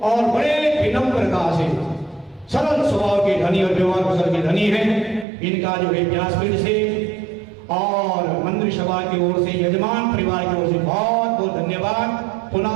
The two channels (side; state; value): left; drops out; at 5.2 s